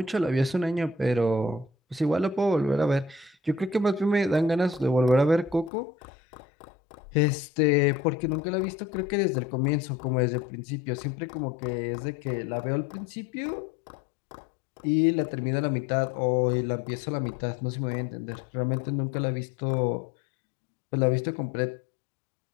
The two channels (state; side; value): drops out; right; at 5.7 s